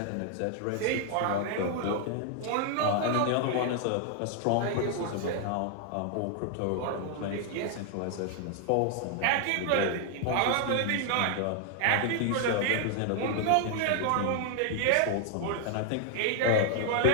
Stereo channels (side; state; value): both; different; correlation 0.00